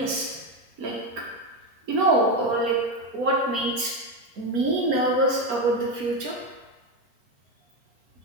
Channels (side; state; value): left; late; 4.3 ms